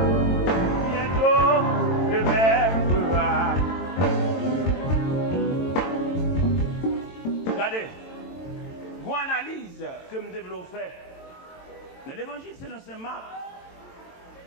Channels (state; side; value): late; right; 22 ms